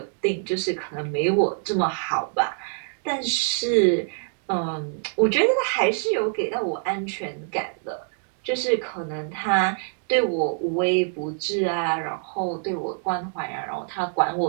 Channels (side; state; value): left; silent; 62 dB below the other